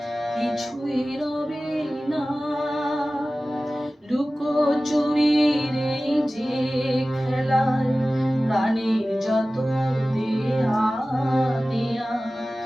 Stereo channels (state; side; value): normal; both; correlation 0.96